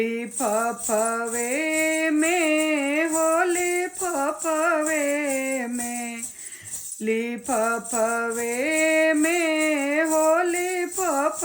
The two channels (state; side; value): identical; both; correlation 1.00